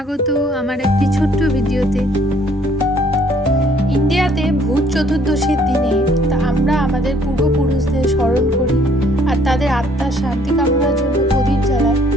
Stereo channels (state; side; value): normal; both; correlation 0.62